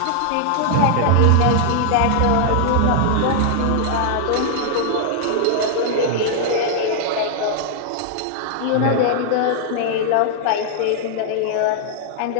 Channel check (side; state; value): both; different; correlation -0.01